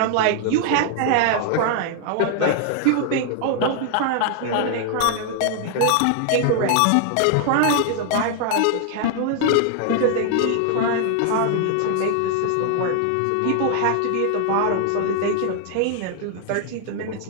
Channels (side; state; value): both; different; correlation 0.00